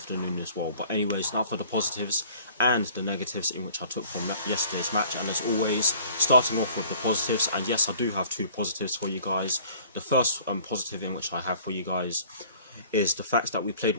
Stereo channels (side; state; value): both; inverted; correlation -0.51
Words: as well. But anyways, now for the positives and the negatives in which I took from yesterday's match. And as always, starting off with the positives, and yes, I do have two positives for you guys. The first positive in which I have for you guys is the fact that we